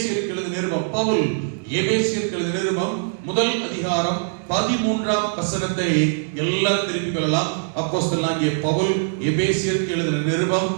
எழுதின நிருபம், பவுல் எபேசியருக்கு எழுதின நிருபம் முதல் அதிகாரம் 13ஆம் வசனத்தை எல்லாரும் திருப்பிக் கொள்ளலாம். அப்போஸ்தலனாகிய பவுல் எபேசியருக்கு எழுதின நிருபம்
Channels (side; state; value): left; silent; digital silence